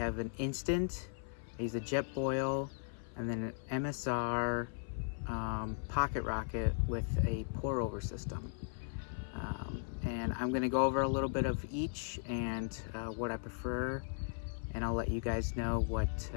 an instant, I use a jet boil, and then an MSR pocket rocket with a pour over system. And I'm going to go over a little bit of each and what I prefer, and I'll let you guys know what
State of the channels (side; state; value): right; silent; 53 dB below the other